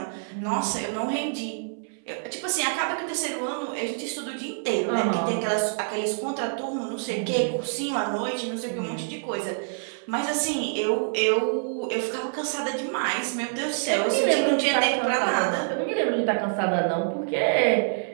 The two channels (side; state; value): left; silent; 61 dB below the other